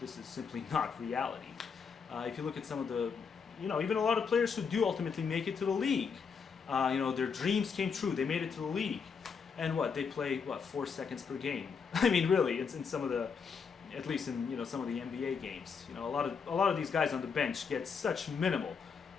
this is simply not reality. If you look at some of the, even a lot of players who do ultimately make it to the league, their dreams came true. They made it to the league, and they play 4 seconds per game. I mean, really, it's in some of the, at least in some of the NBA games. A lot of these guys on the bench get such minimal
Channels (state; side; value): quieter; right; 5.9 dB